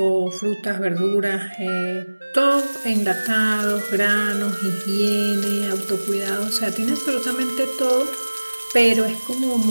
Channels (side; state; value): both; inverted; correlation -1.00